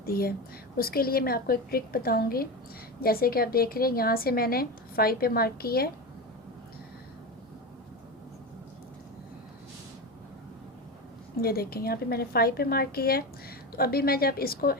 है। उसके लिए मैं आपको एक ट्रिक बताऊँगी। जैसे कि आप देख रहे हैं यहाँ से मैंने 5 पे मार्क किया है, ये देखें यहाँ पे मैंने 5 पे मार्क किया है। तो अभी मैं जब इसको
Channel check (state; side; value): normal; both; correlation 0.21